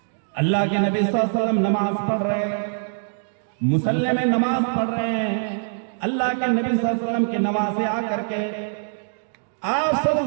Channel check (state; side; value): silent; left; digital silence